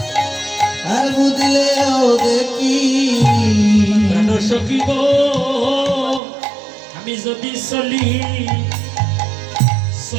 আর মুদিলেও দেখি প্রাণ সখী গো আমি যদি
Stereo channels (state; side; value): drops out; left; at 6.2 s